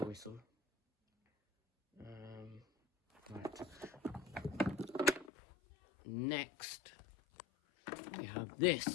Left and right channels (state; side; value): drops out; right; at 5.3 s